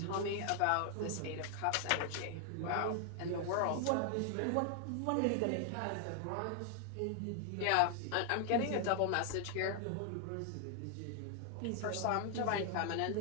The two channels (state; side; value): different; both; correlation 0.00